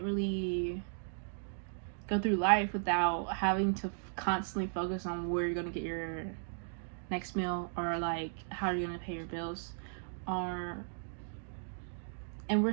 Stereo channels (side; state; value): left; silent; digital silence